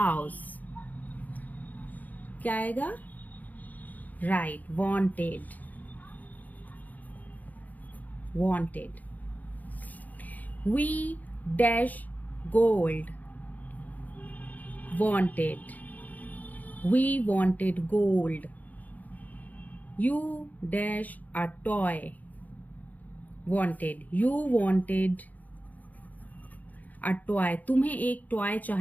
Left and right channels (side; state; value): right; late; 0.080 ms